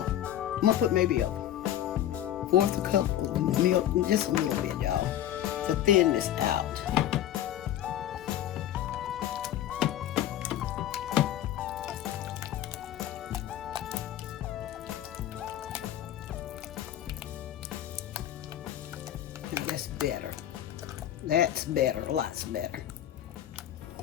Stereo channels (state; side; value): quieter; right; 11.9 dB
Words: I'm gonna put maybe a fourth a cup of milk, just a little bit, y'all, to thin this out. Now that's better. That's better, lots better.